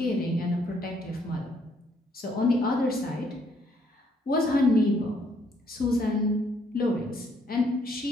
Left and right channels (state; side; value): normal; both; correlation 0.68